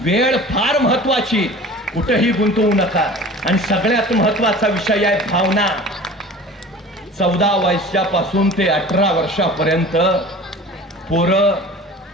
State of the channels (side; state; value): both; normal; correlation 0.40